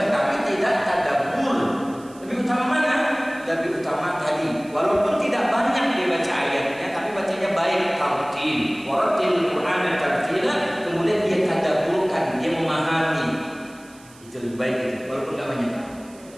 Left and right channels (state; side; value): noise; right; hiss, 25 dB below the sound